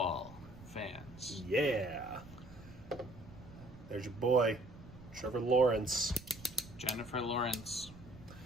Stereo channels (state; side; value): noise; right; rumble, 18 dB below the sound